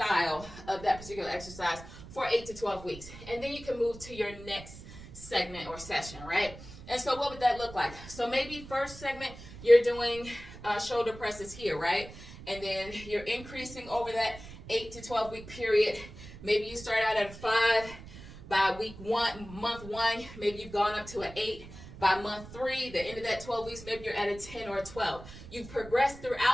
of that particular exercise for 8 to 12 weeks. And then you can move to your next segment or session, right? And so what would that look like? So maybe first segment, you're doing shoulder presses here, right? And then you're increasing over that 8 to 12 week period. Maybe you start out at a 5 by month one, maybe you've gone up to an 8 by month 3, the end of that 12 weeks, maybe you're at a 10 or a 12. You've progressed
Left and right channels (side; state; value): right; noise; rumble, 15 dB below the sound